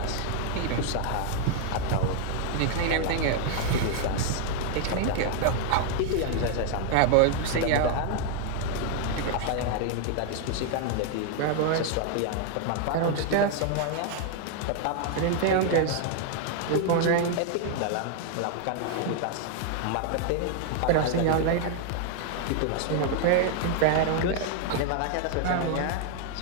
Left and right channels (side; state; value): both; different; correlation 0.00